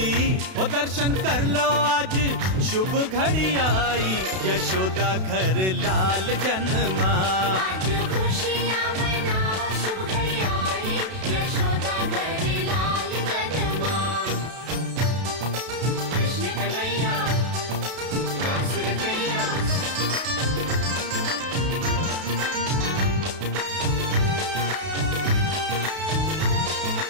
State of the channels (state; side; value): late; left; 32 ms